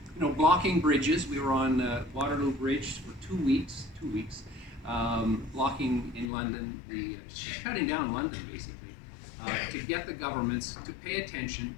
you know, blocking bridges. We were on Waterloo Bridge for 2 weeks, blocking in London, shutting down London, basically. To get the governments to pay attention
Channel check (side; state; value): right; drops out; at 6.3 s